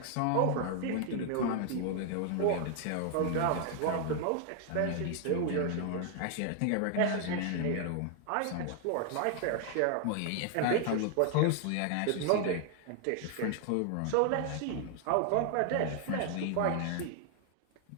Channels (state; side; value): different; both; correlation 0.00